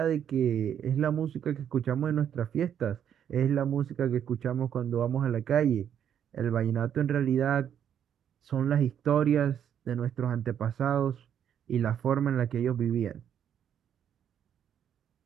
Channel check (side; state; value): left; quieter; 9.1 dB